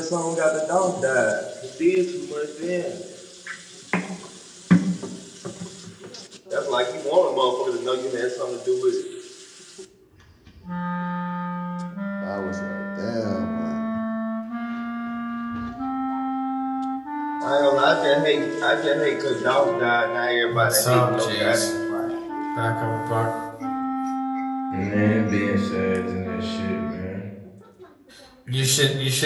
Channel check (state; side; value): identical; both; correlation 1.00